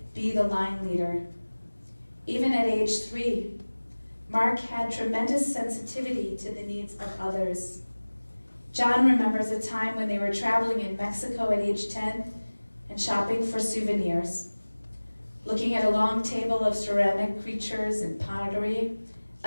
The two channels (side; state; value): both; inverted; correlation -1.00